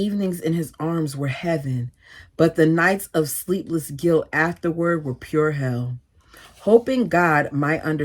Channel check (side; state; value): both; identical; correlation 1.00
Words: in his arms were heaven, but the nights of sleepless guilt afterward were pure hell. Hoping God might